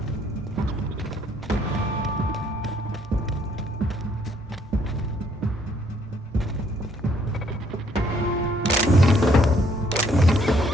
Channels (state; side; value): normal; both; correlation 0.67